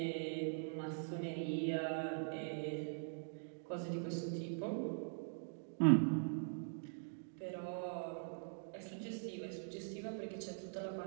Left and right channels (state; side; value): silent; left; digital silence